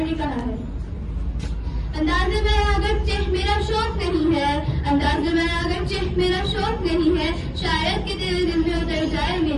کہا ہے، انداز میں اگرچہ میرا شوق نہیں ہے، انداز میں اگرچہ میرا شوق نہیں ہے، شاید کہ تیرے دل میں اتر جائے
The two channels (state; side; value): identical; both; correlation 1.00